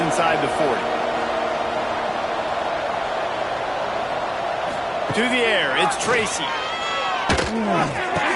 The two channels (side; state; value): both; identical; correlation 1.00